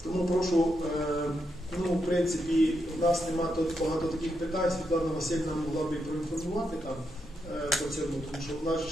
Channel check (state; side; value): normal; both; correlation 0.83